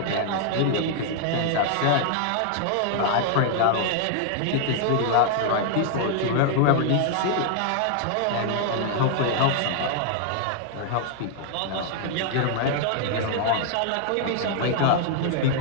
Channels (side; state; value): both; different; correlation 0.00